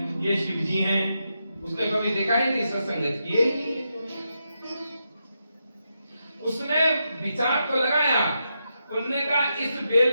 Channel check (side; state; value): both; inverted; correlation -0.85